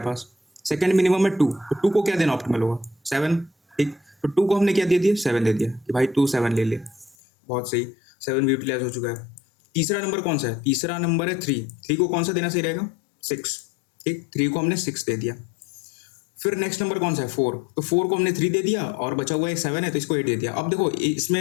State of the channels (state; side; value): drops out; right; at 7.2 s